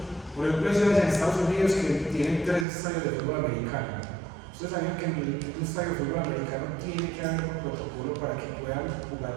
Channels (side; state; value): left; drops out; at 2.7 s